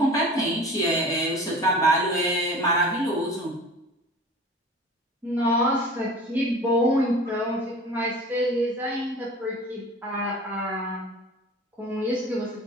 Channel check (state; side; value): normal; both; correlation 0.41